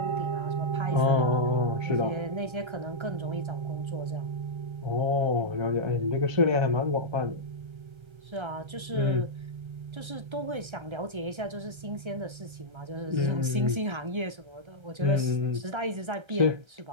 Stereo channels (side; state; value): left; late; 1.3 ms